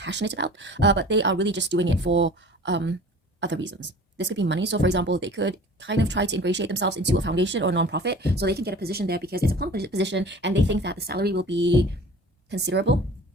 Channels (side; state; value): both; normal; correlation 0.43